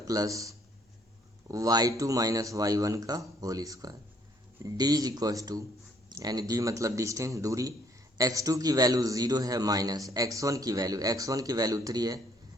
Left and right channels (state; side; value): normal; both; correlation 0.64